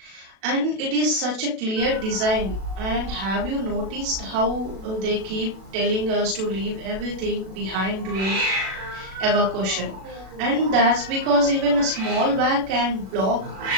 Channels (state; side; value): late; left; 37 ms